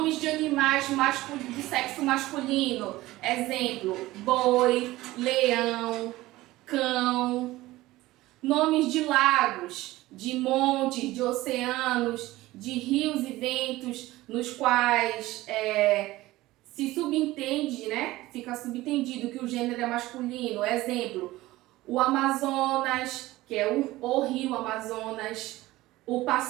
de animais de sexo masculino. Exemplo, boi, leão, cão. Nomes de lagos, de montes, de oceanos, de rios e ventos, nos quais se subentende, né? Fica subentendido que o gênero é masculino. Exemplo, o Amazonas, que é o rio Amazonas. O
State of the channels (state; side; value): quieter; left; 17.8 dB